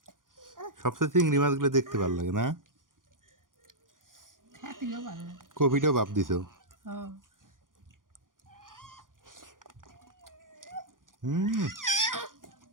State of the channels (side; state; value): left; late; 0.89 ms